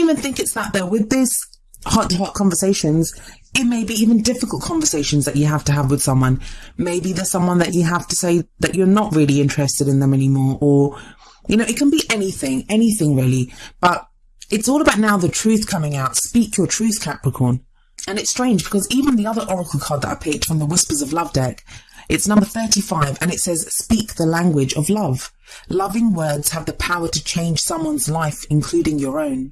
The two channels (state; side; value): identical; both; correlation 1.00